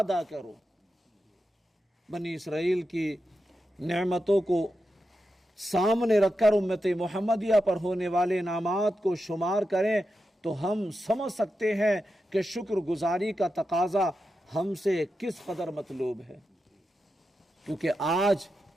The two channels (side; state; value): both; normal; correlation 0.89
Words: کرو۔ بنی اسرائیل کی نعمتوں کو سامنے رکھ کر امت محمدیہ پر ہونے والے انعامات کو شمار کریں تو ہم سمجھ سکتے ہیں کہ شکر گزاری کا تقاضا ہم سے کس قدر مطلوب ہے، کیونکہ آج